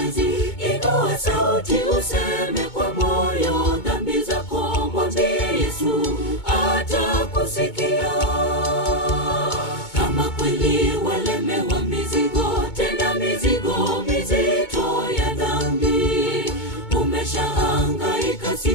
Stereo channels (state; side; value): late; right; 2.2 ms